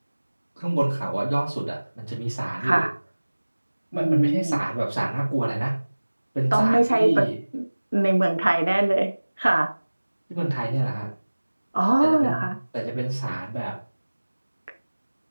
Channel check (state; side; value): inverted; both; correlation -1.00